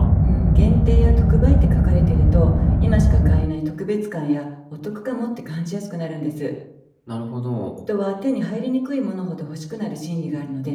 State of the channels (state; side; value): identical; both; correlation 1.00